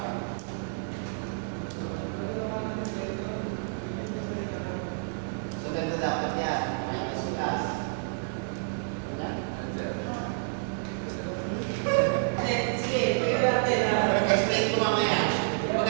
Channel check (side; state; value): left; silent; digital silence